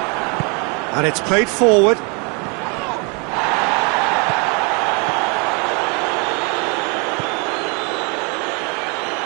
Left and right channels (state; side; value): quieter; left; 33.1 dB